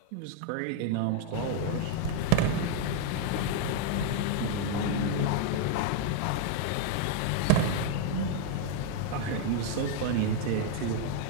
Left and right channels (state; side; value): different; both; correlation 0.00